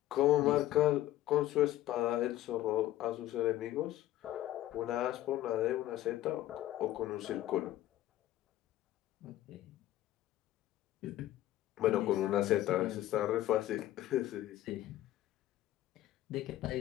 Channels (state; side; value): quieter; right; 14.2 dB